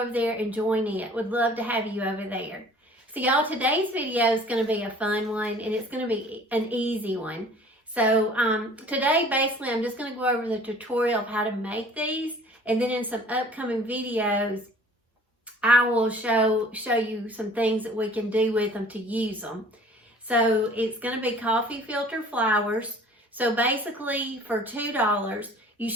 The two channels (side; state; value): both; normal; correlation 0.50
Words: there and join it. Would love to have you over there. So y'all, today's video is going to be a fun one, and it's going to be an easy one. So today, basically, I'm just going to go over the tutorial of how to make these, and then in some upcoming videos, I will show you some things that we can do with them to use them. So it's going to be coffee filter flowers. So basically, for $2, you